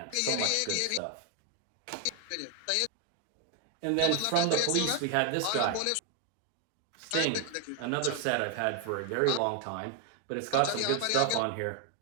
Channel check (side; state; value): both; different; correlation 0.00